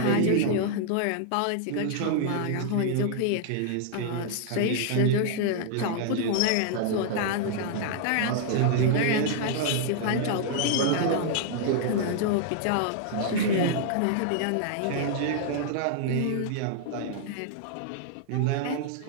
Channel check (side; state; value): both; different; correlation -0.01